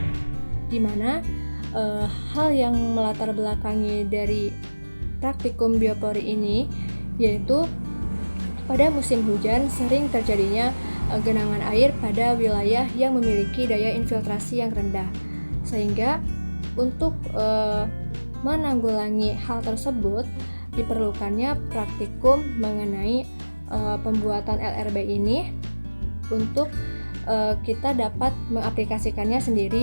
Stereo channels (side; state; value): both; inverted; correlation -1.00